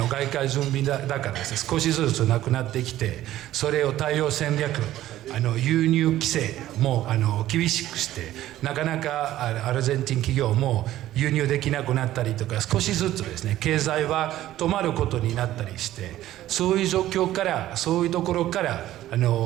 外貨準備高ですね、少しずつなくなってきて、それを対応戦略、輸入規制も厳しくして、なかなかアルゼンチン企業も輸入できなくなったりとか、少しずつですね、経済は止まることになったりして、そういう状況から、そういうところから、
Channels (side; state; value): left; quieter; 14.0 dB